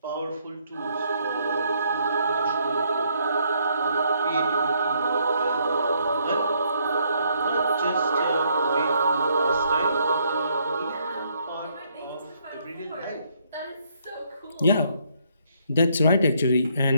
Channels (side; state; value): both; inverted; correlation -0.70